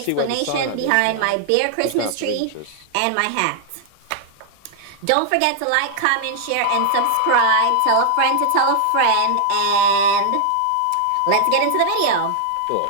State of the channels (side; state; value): both; different; correlation 0.00